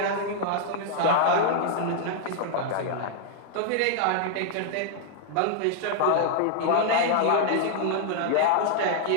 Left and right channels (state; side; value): different; both; correlation 0.00